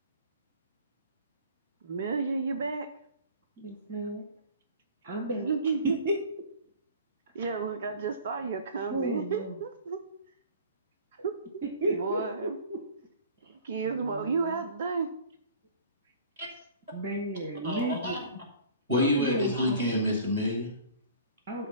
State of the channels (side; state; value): both; inverted; correlation -0.45